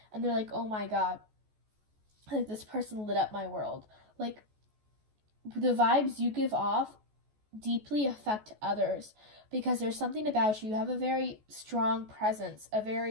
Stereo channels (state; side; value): late; left; 14 ms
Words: and they're like, oh my god, like this person lit up my world. Like, the vibes you give off deeply affect others because there's something about you. You have a very strong presence, a